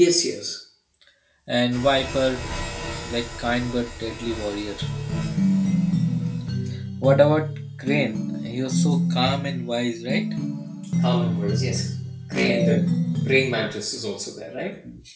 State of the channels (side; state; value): both; identical; correlation 1.00